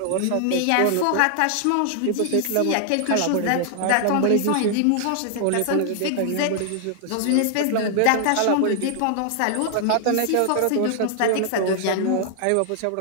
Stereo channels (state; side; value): different; both; correlation 0.00